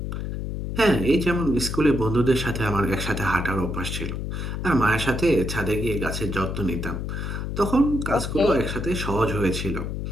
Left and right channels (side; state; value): left; noise; hum, 4 dB below the sound